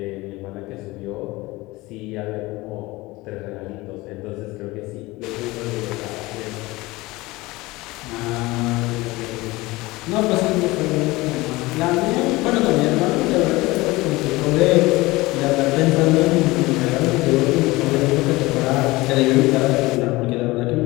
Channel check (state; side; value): quieter; right; 20.9 dB